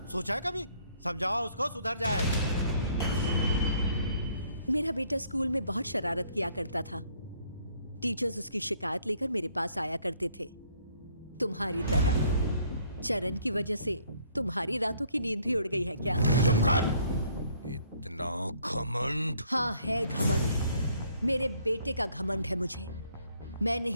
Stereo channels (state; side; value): inverted; both; correlation -0.64